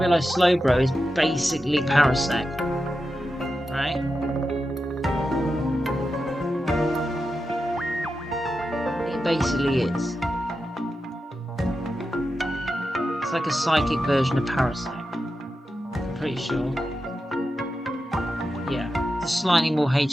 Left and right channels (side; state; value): both; normal; correlation 0.90